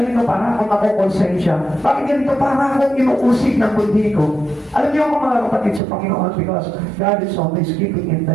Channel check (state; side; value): drops out; left; at 5.8 s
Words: para akong nakukonsensya? Bakit ganito para akong inuusig ng bundi ko? Alam niyo mga kapatid sa Panginoon, because God is always keeping